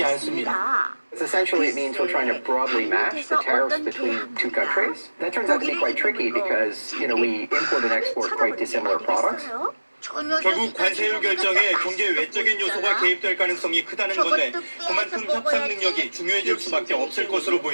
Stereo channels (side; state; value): both; inverted; correlation -1.00